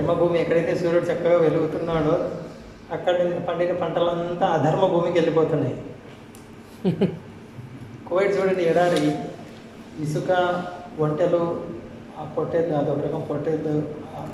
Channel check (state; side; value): identical; both; correlation 1.00